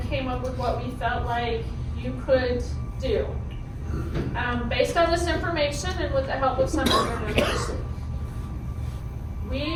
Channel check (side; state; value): both; identical; correlation 1.00